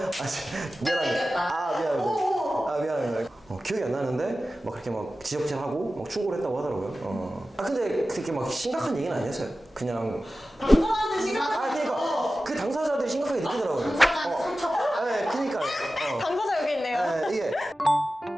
미안합니다. 미안합니다. 기억이 안 나는데 막 그렇게 막 지적질하고 막 충고를 했다고 하더라고요. 근데 그렇게 막 심각한 얘기는 아니었어요. 그냥 당사자한테 심각한. 그러니까 그 당사자들이 심각하게 느끼더라고요. 당사자한테 상처. 네, 그니까요. 당사자 여기 있네요. 이게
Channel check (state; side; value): normal; both; correlation 0.95